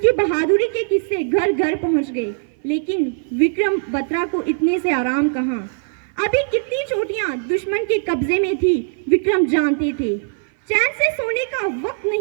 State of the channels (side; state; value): left; silent; 58 dB below the other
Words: बहादुरी के किस्से घर घर पहुंच गए, लेकिन विक्रम बत्रा को इतने से आराम कहाँ। अभी कितनी चोटियां दुश्मन के कब्जे में थी विक्रम जानते थे। चैन से सोने का वक्त